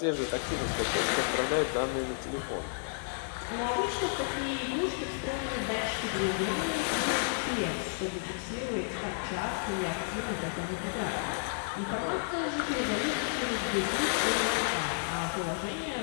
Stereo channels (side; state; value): right; silent; 57 dB below the other